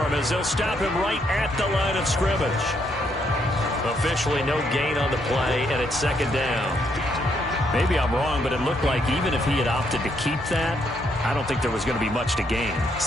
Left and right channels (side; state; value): both; normal; correlation 0.74